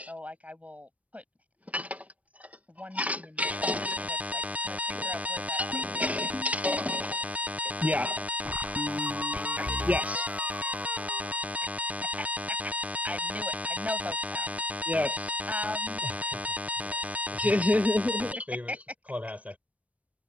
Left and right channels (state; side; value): late; left; 0.068 ms